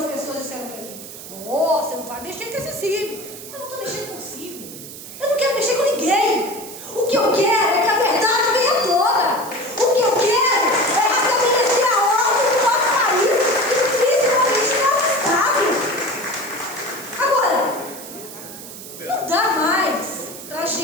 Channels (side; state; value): right; noise; hiss, 13 dB below the sound